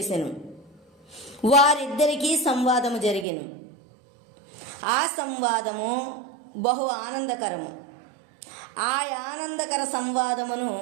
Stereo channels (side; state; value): left; drops out; at 3.2 s